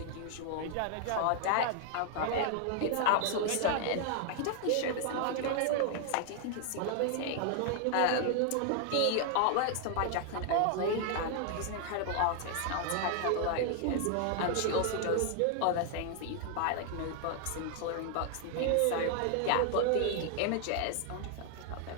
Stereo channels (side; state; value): both; different; correlation 0.00